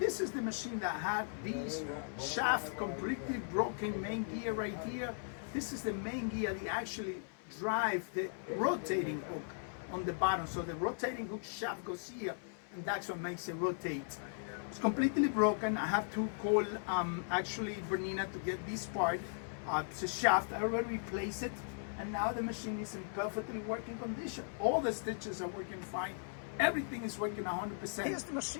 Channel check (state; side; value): silent; right; 53 dB below the other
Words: is the machine that had these shaft completely broken main gear right here. This is the main gear that actually drive the rotating hook on the bottom. So the rotating hook shaft goes here, and that's what makes it rotate. It's completely broken. I have to call actually Bernette to get this part. It's a shaft. I already replaced it. And now the machine is in perfectly working condition. All the stitches are working fine. Everything is working 100%. Here's the